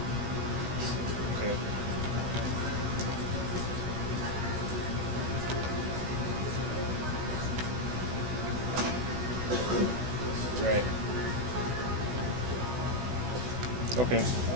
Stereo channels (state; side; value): late; left; 16 ms